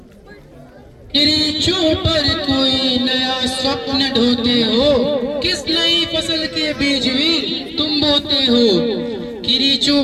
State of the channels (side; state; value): both; identical; correlation 1.00